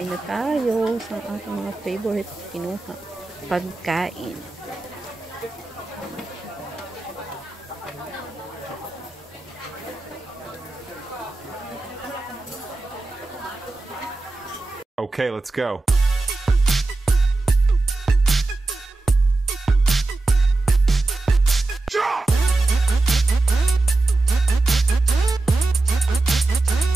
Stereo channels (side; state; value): left; quieter; 3.2 dB